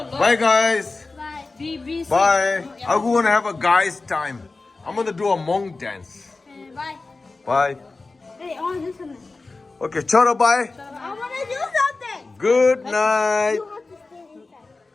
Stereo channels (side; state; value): right; quieter; 3.6 dB